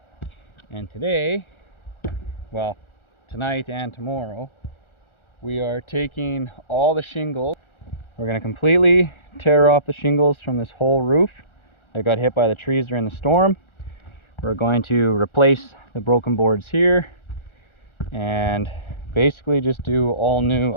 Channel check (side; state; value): right; late; 1.4 ms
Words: And today, well, tonight and tomorrow, we are taking all the shingles. We're going to completely tear off the shingles from this whole roof that got hit by the trees during the storm. We're going to replace the broken boards here and basically just do all new